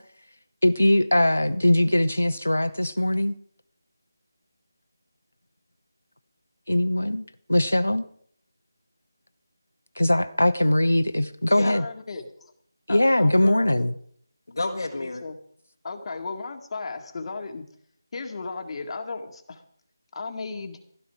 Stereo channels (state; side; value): inverted; both; correlation -0.99